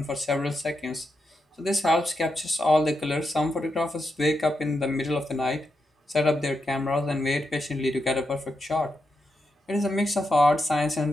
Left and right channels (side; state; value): both; normal; correlation 0.85